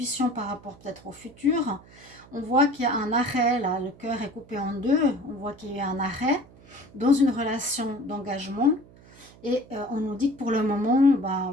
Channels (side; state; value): right; noise; hum, 24 dB below the sound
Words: par rapport peut-être au futur. On voit qu'il y a un arrêt, là, le cœur est coupé en deux. On voit qu'il y a un arrêt dans une relation d'engagement. Et on nous dit que pour le moment, ben,